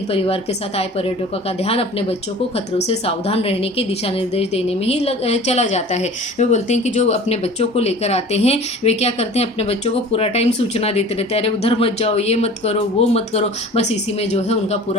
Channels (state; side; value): normal; both; correlation 0.42